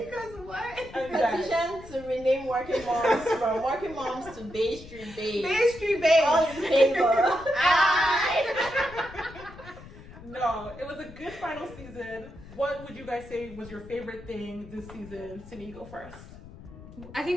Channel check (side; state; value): left; noise; rumble, 17 dB below the sound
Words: Because what? Petition to rename Workin Moms from Workin Moms to Bay Street Babes. Bay Street Babes. All in favor. No, it was a good final season. What would you guys say was your favorite thing this season? Sydney, you go first. I